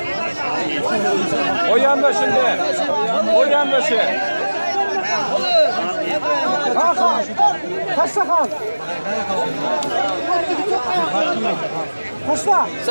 O yanda şimdi. O yanda şey. Hakan. Kaçta kal? Kaçta?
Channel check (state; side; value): inverted; both; correlation -1.00